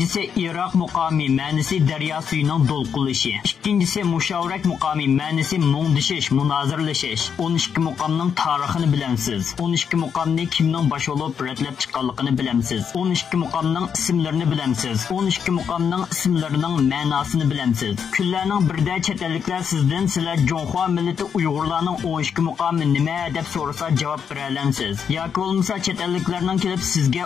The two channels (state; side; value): quieter; right; 7.1 dB